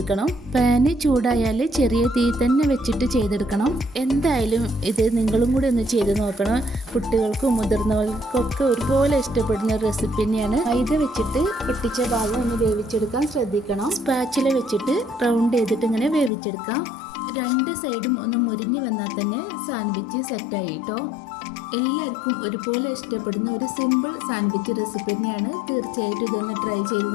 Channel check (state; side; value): drops out; right; at 16.3 s